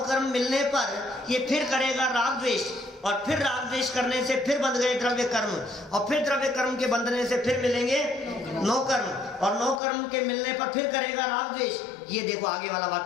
कर्म मिलने पर ये फिर करेगा राग द्वेष, और फिर राग द्वेष करने से फिर बंध गए द्रव्य कर्म, और फिर द्रव्य कर्म के बंधने से फिर मिलेंगे 9 कर्म, और 9 कर्म के मिलने पर फिर करेगा राग द्वेष। ये देखो आगे वाला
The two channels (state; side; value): drops out; right; at 9.8 s